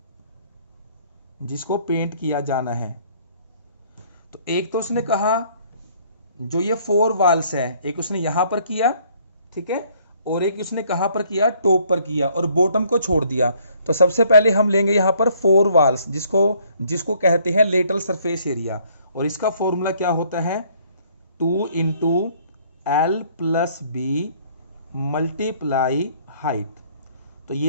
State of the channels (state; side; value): inverted; both; correlation -0.62